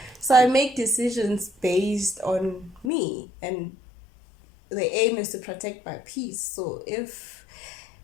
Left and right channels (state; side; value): drops out; right; at 2.9 s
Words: So I make decisions based on me, and the aim is to protect my peace. So if